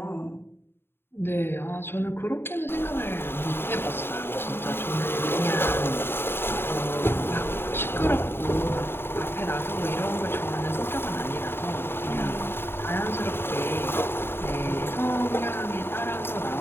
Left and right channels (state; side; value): late; right; 0.11 ms